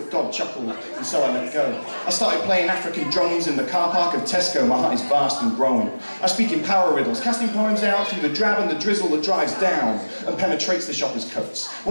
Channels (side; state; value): both; inverted; correlation -1.00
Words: God chuckled and so I let go. I started playing African drums in the car park of Tesco. My heart is vast and growing. I speak in power riddles, casting poems out through the drab and the drizzle that drives down and penetrates the shopper's coats.